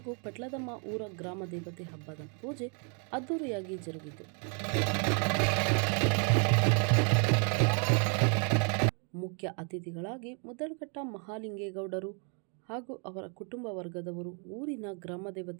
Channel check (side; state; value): left; quieter; 39.0 dB